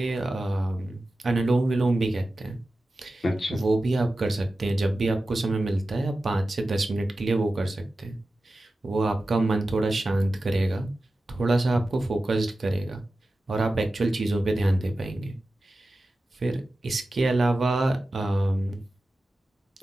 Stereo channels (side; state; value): both; normal; correlation 0.94